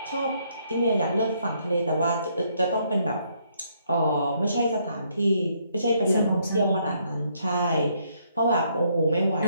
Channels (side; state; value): both; inverted; correlation -0.71